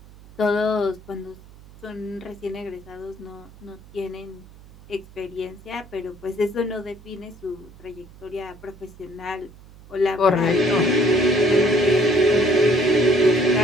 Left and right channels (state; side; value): noise; right; hum, 22 dB below the sound